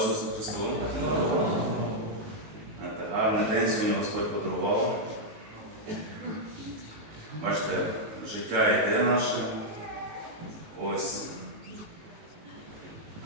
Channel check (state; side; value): late; left; 19 ms